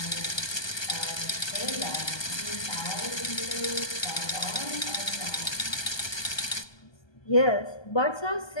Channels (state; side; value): late; right; 1.2 ms